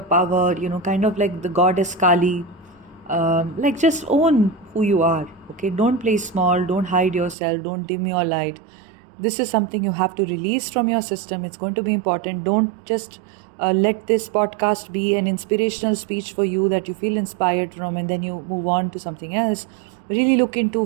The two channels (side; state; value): left; drops out; at 7.4 s